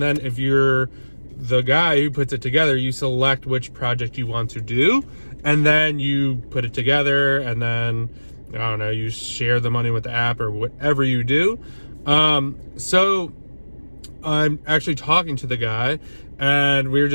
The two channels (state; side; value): inverted; both; correlation -1.00